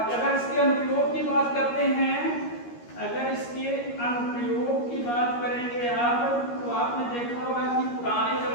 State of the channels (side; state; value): right; late; 13 ms